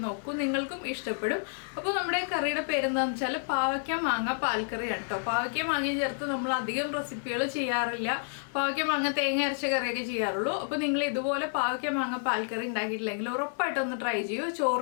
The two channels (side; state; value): right; silent; digital silence